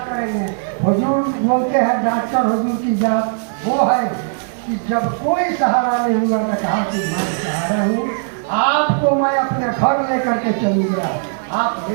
करेंगे। हुजूर बोलते हैं डॉक्टर हुजूर की जात वो है कि जब कोई सहारा नहीं हुआ तो कहा कि मैं सहारा हूँ, आपको मैं अपने घर लेकर के चलूँगा, आप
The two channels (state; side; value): silent; left; digital silence